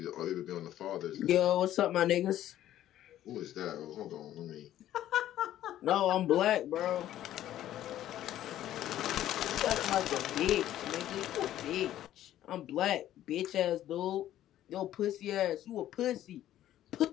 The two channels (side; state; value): right; quieter; 12.7 dB